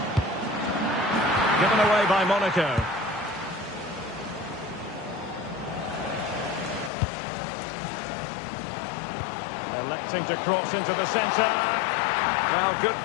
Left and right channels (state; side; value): drops out; right; at 6.9 s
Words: Given away by Monaco. Electing to cross into the centre. Well, good